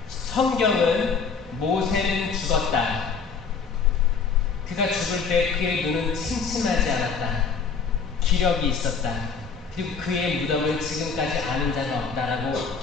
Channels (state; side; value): quieter; right; 5.5 dB